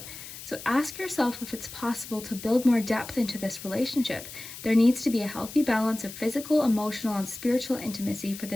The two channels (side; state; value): left; noise; hiss, 13 dB below the sound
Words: So ask yourself if it's possible to build more depth into this relationship. There needs to be a healthy balance of physical, emotional, and spiritual intimacy for